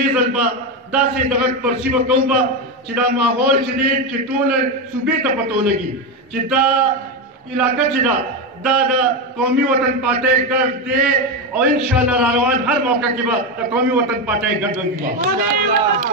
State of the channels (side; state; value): both; normal; correlation 0.11